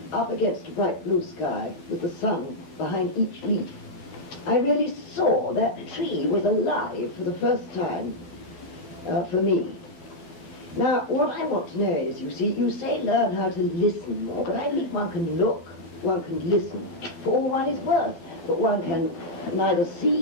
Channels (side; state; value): right; late; 12 ms